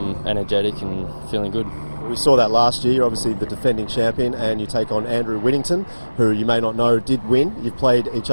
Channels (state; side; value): inverted; both; correlation -1.00